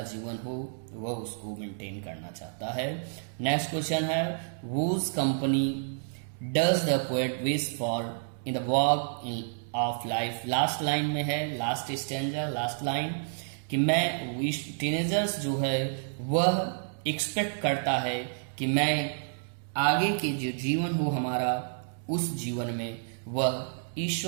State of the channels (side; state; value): left; silent; digital silence